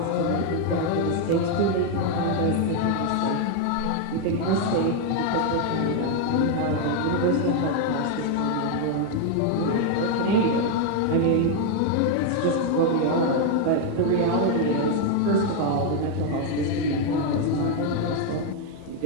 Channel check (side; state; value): both; different; correlation 0.01